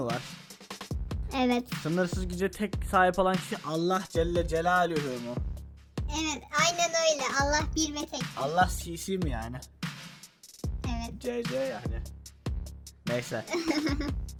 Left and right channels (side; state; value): both; identical; correlation 1.00